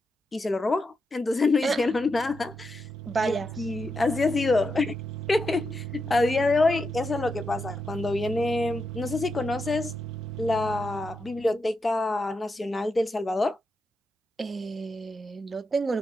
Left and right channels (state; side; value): normal; both; correlation 0.85